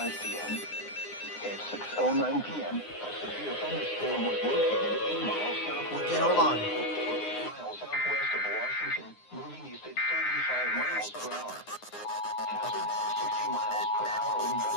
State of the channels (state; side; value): late; right; 9.7 ms